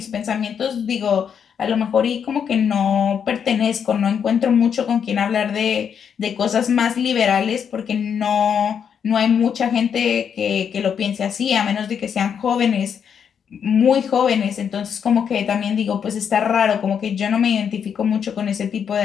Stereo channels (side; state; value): right; quieter; 7.6 dB